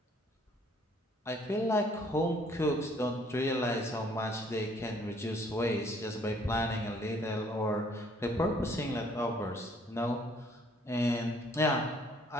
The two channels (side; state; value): both; normal; correlation 0.61